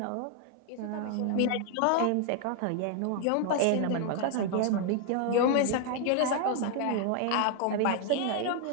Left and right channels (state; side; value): different; both; correlation 0.00